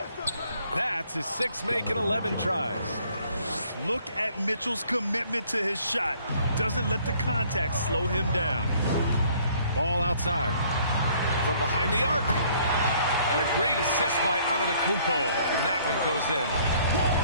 That's his 6th make in 11 tries. Look at Mitchell's commitment to his shot. Doesn't let the contact slow him down. Ball outside. From behind the arc. And a great assist by Antetokounmpo. And that one goes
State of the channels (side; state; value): both; inverted; correlation -0.60